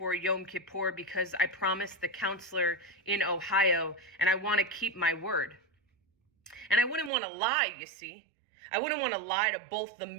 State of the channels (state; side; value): drops out; left; at 7.1 s